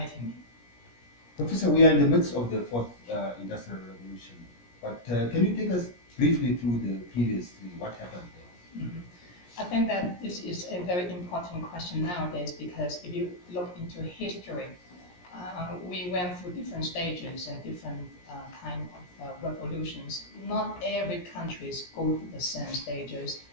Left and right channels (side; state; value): right; late; 17 ms